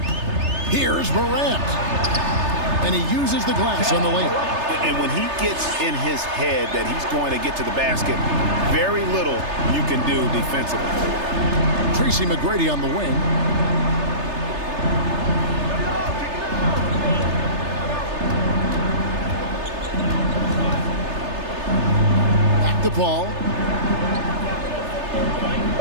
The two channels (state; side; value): late; left; 3.3 ms